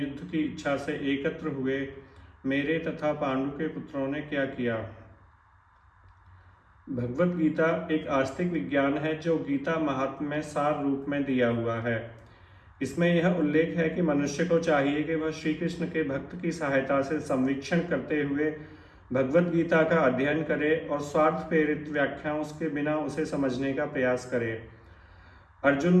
की इच्छा से एकत्र हुए मेरे तथा पांडु के पुत्रों ने क्या किया। भगवत गीता एक आस्तिक विज्ञान है जो गीता महात्म्य में सार रूप में दिया हुआ है। इसमें यह उल्लेख है कि मनुष्य को चाहिए कि वह श्री कृष्ण के भक्त की सहायता से संवीक्षण करते हुए भगवत गीता का अध्ययन करे और स्वार्थ प्रेरित व्याख्याओं के बिना उसे समझने का प्रयास करे। अर्जुन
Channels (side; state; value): both; identical; correlation 1.00